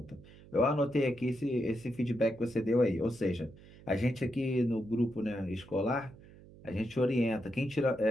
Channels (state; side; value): noise; right; hum, 21 dB below the sound